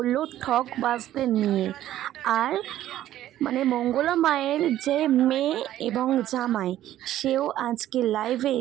ঠক বাজদের নিয়ে। আর মঙ্গলা মায়ের যে মেয়ে এবং জামাই, সেও আজকে লাইভে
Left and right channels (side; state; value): left; quieter; 13.0 dB